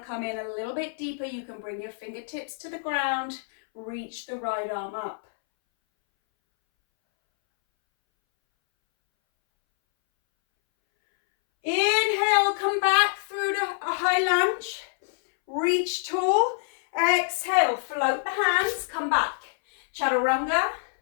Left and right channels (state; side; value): silent; right; 61 dB below the other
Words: come in a little bit deeper, you can bring your fingertips to the ground. Reach the right arm up. Inhale, come back through to a high lunge. Reach tall. Exhale, float the hands, come back. Chaturanga,